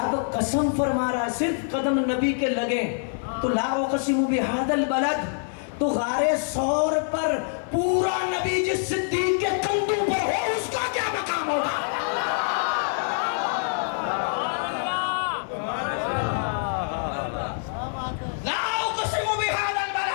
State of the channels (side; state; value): right; silent; 56 dB below the other